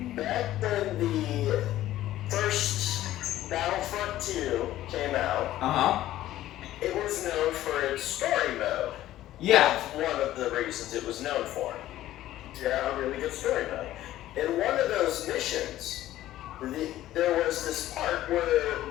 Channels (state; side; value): quieter; right; 14.1 dB